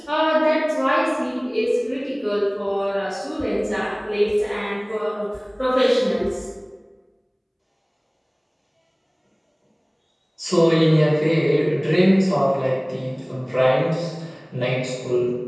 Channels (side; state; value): both; identical; correlation 1.00